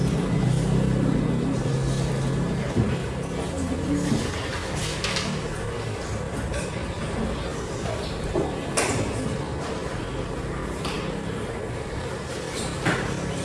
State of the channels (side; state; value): both; identical; correlation 1.00